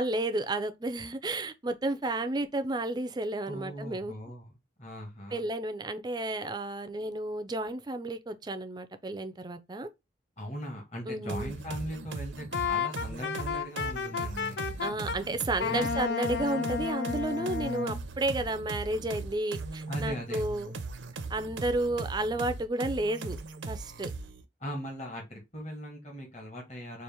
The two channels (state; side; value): normal; both; correlation 0.44